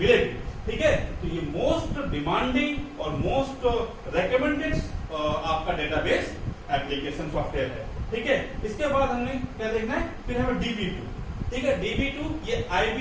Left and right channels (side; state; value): both; identical; correlation 1.00